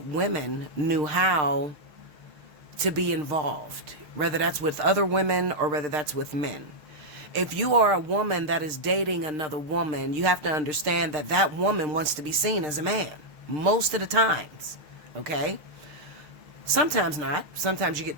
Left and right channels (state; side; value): late; left; 6.6 ms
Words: women knew how to be involved, whether that's with other women or whether that's with men. If you are a woman that is dating another woman, you have to understand that that woman wants to be seen as a man most of the times, okay? Sometimes not. Sometimes you get